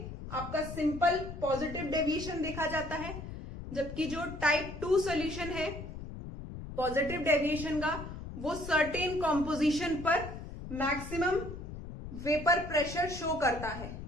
आपका सिंपल पॉजिटिव डेविएशन देखा जाता है, जबकि जो टाइप 2 सॉल्यूशन है पॉजिटिव डेविएशन का, वो सर्टेन कॉम्पोजिशन पर मैक्सिमम वेपर प्रेशर शो करता है।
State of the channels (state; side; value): noise; left; rumble, 10 dB below the sound